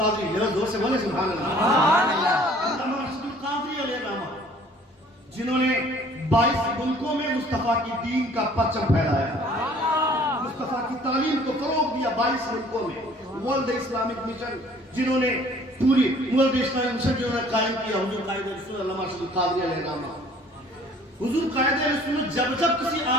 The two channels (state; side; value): normal; both; correlation 0.54